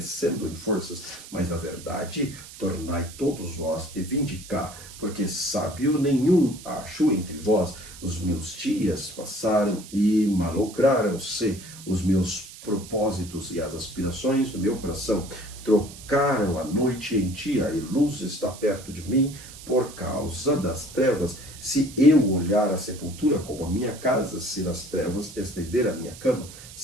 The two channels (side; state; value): right; noise; hiss, 16 dB below the sound